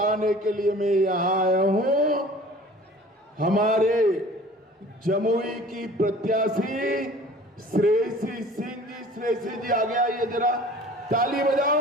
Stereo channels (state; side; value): normal; both; correlation 0.46